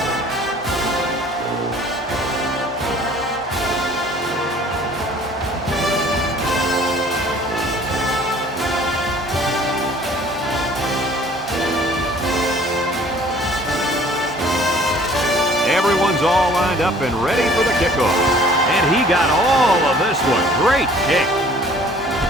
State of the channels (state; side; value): normal; both; correlation 0.53